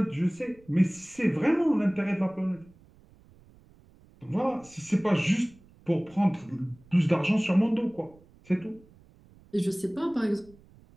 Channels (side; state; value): right; noise; rumble, 27 dB below the sound